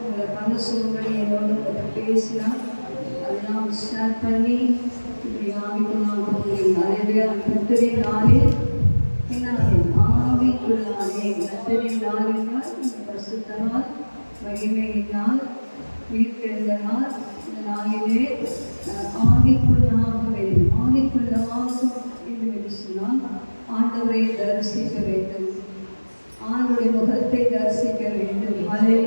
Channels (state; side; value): inverted; both; correlation -1.00